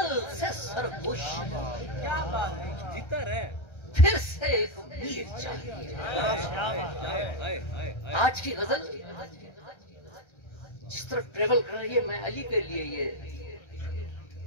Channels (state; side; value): late; right; 1.3 ms